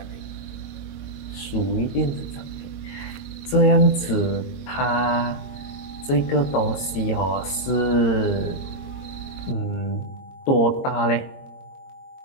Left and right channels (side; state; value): right; late; 22 ms